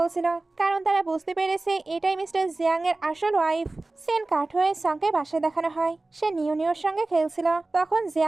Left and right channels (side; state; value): left; quieter; 3.1 dB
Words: কারণ তারা বুঝতে পেরেছে এটাই মিস্টার জিয়াং এর আসল ওয়াইফ। সেন কাট হয়ে সাংকে বাসায় দেখানো হয়। সে নিওর সঙ্গে খেলছিল, তখন